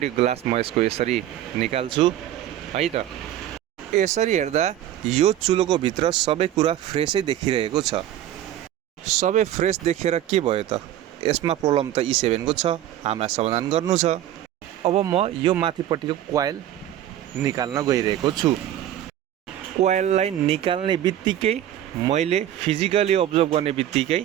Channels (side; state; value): left; quieter; 12.0 dB